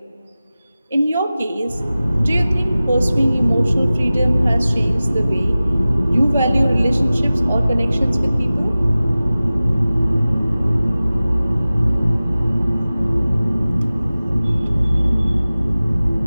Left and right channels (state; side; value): inverted; both; correlation -0.97